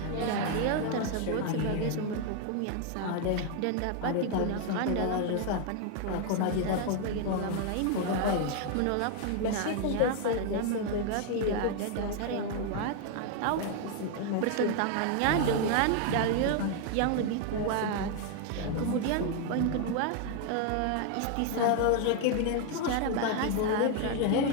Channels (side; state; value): both; different; correlation 0.00